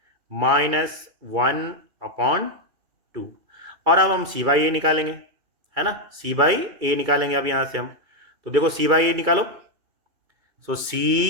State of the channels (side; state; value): left; late; 2.3 ms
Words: -1/2, और अब हम c/a निकालेंगे, है ना, c/a निकालेंगे अब यहाँ से हम, तो देखो c/a निकालो, सो